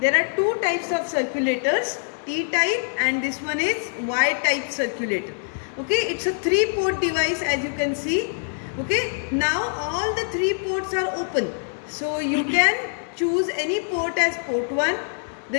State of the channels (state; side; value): silent; right; digital silence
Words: There are two types of circulators, T-type and this one is Y-type circulator. Okay, it's a 3-port device as you can see. Okay, now all the 3 ports are open. So you can choose any port as port 1.